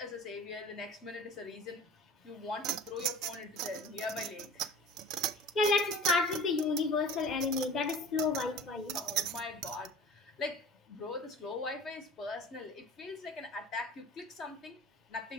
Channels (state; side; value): normal; both; correlation 0.39